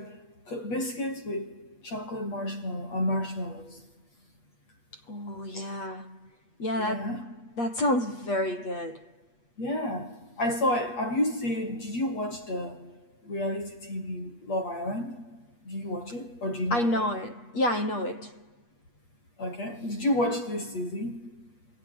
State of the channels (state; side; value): late; right; 8.4 ms